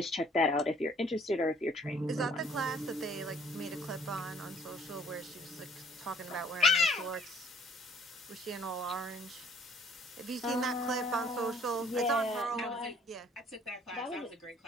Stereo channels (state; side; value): normal; both; correlation 0.59